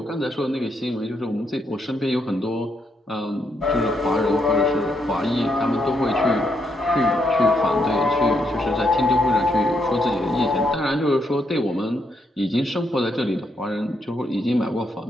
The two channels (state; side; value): normal; both; correlation 0.77